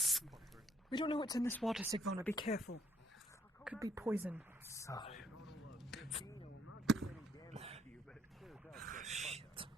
We don't know what's in this water, Sigvona. Be careful. Could be poison. Shit.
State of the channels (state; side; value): normal; both; correlation 0.68